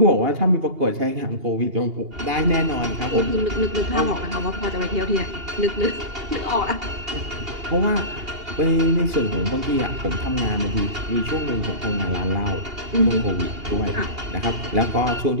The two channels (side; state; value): left; late; 2.8 ms